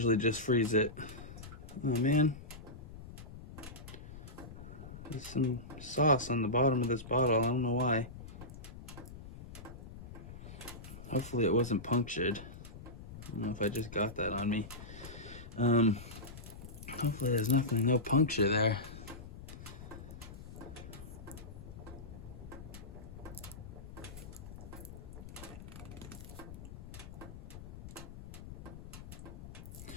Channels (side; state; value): left; noise; rumble, 13 dB below the sound